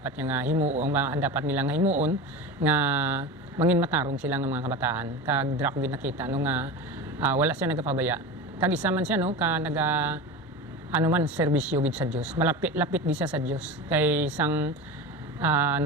niya nga himuon dapat nila nga himuon nga mangin matarong sila nga mga kabataan. Kag dira ko gid nakita no nga wala siya nagapabaya. Kag isa man siya no ka serbisyo gid sa Dios. Lapit gid siya sa Dios. Kay isang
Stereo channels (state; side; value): normal; both; correlation 0.27